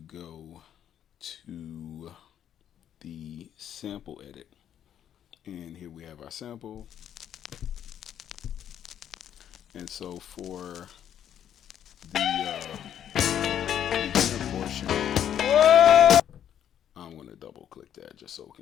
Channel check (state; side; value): quieter; right; 9.9 dB